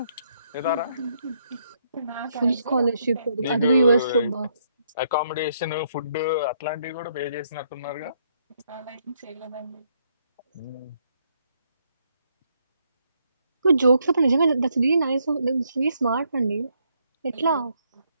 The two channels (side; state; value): both; inverted; correlation -0.73